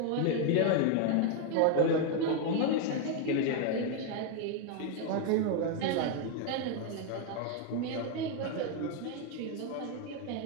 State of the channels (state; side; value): different; both; correlation 0.01